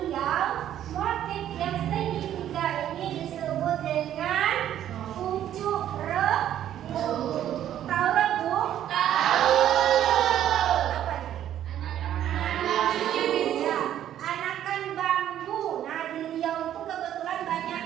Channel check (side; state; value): left; quieter; 11.2 dB